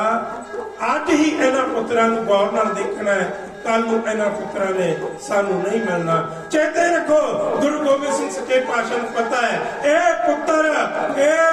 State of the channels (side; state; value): both; identical; correlation 1.00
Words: ਅੱਜ ਹੀ ਇਹਨਾਂ ਪੁੱਤਰਾਂ ਨੂੰ ਗੌਰ ਨਾਲ ਦੇਖਣਾ ਹੈ, ਕੱਲ ਨੂੰ ਇਹਨਾਂ ਪੁੱਤਰਾਂ ਨੇ ਸਾਨੂੰ ਨਹੀਂ ਮਿਲਣਾ। ਚੇਤੇ ਰੱਖੋ, ਗੁਰੂ ਗੋਬਿੰਦ ਸਿੰਘ ਸੱਚੇ ਪਾਤਸ਼ਾਹ ਨੂੰ ਪਤਾ ਹੈ ਇਹ ਪੁੱਤਰ